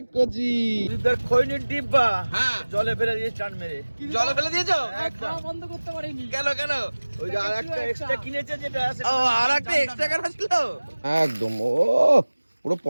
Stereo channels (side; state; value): both; inverted; correlation -1.00